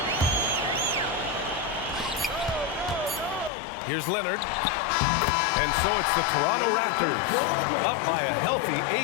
Here's Leonard. And so it's the Toronto Raptors up by a healthy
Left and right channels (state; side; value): drops out; right; at 3.5 s